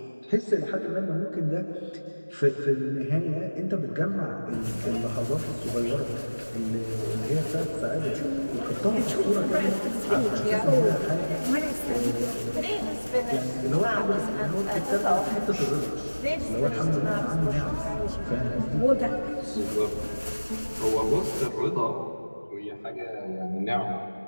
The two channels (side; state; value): both; inverted; correlation -1.00